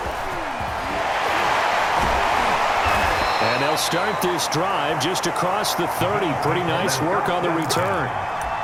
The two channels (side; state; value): both; identical; correlation 1.00